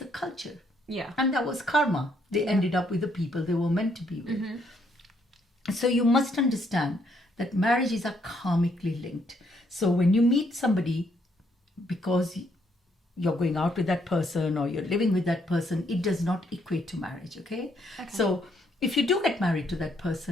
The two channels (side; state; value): both; normal; correlation 0.72